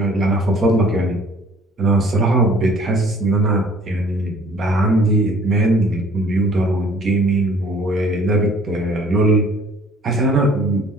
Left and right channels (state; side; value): normal; both; correlation 0.54